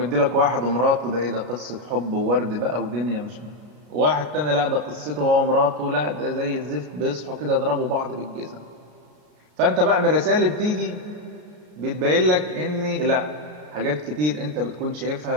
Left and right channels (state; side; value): late; left; 33 ms